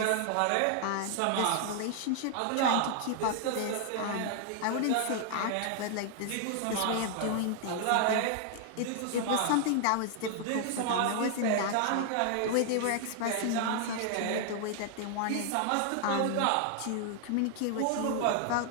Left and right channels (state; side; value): different; both; correlation -0.01